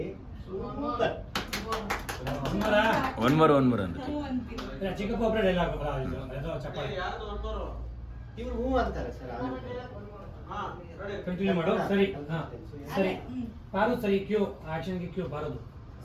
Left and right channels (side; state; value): both; identical; correlation 1.00